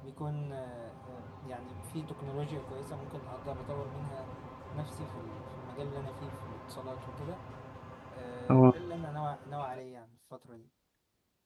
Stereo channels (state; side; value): identical; both; correlation 1.00